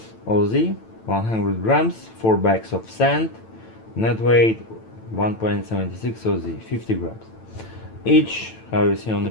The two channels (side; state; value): right; late; 9.0 ms